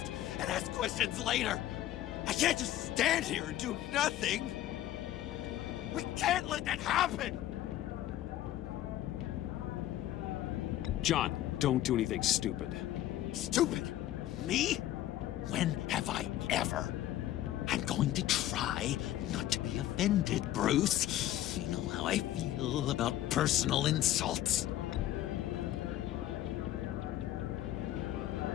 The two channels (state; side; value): quieter; right; 13.4 dB